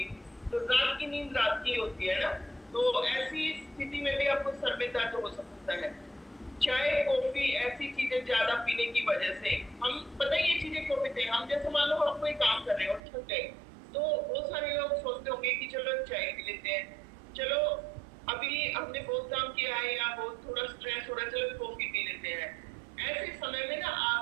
तो रात की नींद रात की होती है ना, तो ऐसी स्थिति में भी आपको सर में दर्द हो सकता है। चाय कॉफी ऐसी चीजें ज्यादा पीने की वजह से, हम पता है ये चीजें क्यों पीते हैं, हम जैसे मान लो आप कोई काम कर रहे हो, थक गए, तो बहुत सारे लोग सोचते होंगे कि चलो चाय पी लेते हैं, चलो अभी हमने बहुत काम किया है या बहुत थोड़ा स्ट्रेस हो रहा है, चलो कॉफी पी लेते हैं। ऐसे समय में ना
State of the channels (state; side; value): drops out; left; at 13.0 s